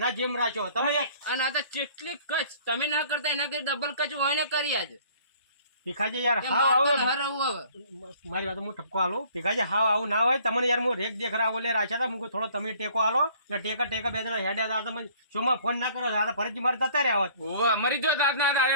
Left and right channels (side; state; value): both; inverted; correlation -0.56